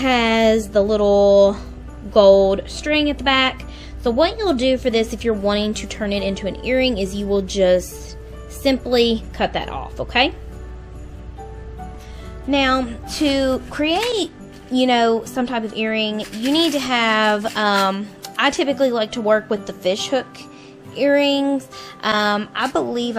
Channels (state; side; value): identical; both; correlation 1.00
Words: the little gold string at the back. So what you'll do for this, if you're wanting to turn it into an earring, is you will just simply cut that off, okay? Now, to create, you know, some type of earring, you need to have, I typically like to work with the fish hook earrings. I believe